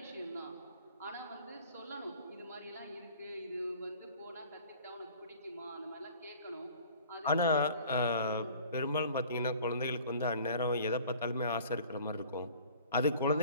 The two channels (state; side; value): inverted; both; correlation -0.49